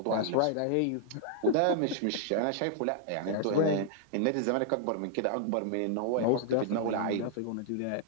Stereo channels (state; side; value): different; both; correlation -0.01